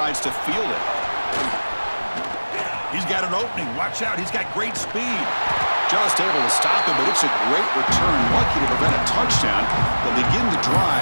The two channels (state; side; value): inverted; both; correlation -1.00